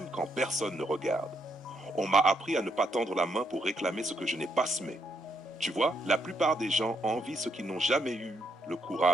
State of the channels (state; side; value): normal; both; correlation 0.76